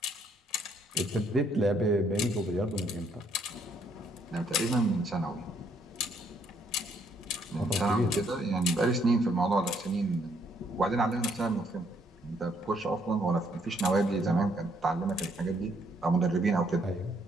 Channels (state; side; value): normal; both; correlation 0.69